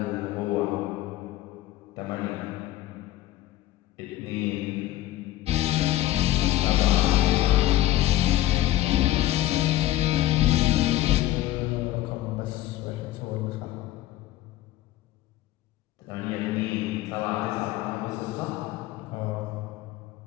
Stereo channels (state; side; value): quieter; right; 14.9 dB